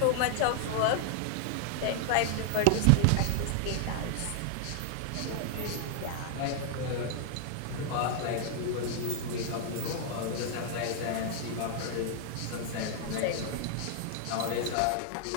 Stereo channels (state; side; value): different; both; correlation 0.00